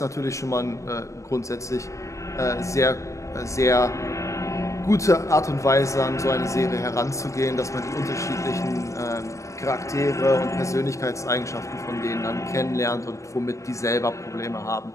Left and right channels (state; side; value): late; right; 0.15 ms